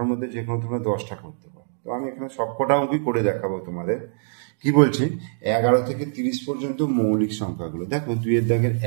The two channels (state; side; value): silent; left; digital silence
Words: মধ্যে যে কোনো তোমরা 10টা করতে পারো। তো আমি এখানে সবকটা অঙ্কই করে দেখাবো তোমাদের। কি বলছি, 11 থেকে 30 পর্যন্ত মৌলিক সংখ্যাগুলো দেখো। 2-এর দাগের